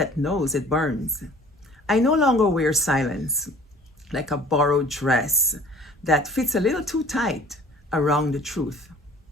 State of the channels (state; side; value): normal; both; correlation 0.49